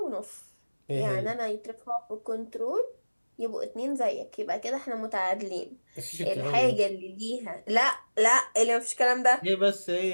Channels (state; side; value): inverted; both; correlation -1.00